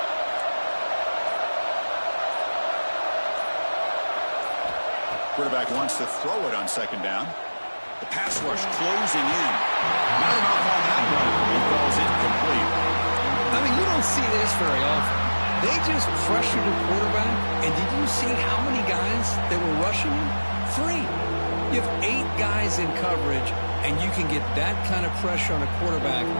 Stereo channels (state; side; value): inverted; both; correlation -1.00